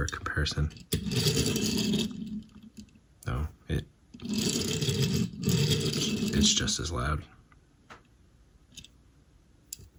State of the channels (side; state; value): both; identical; correlation 1.00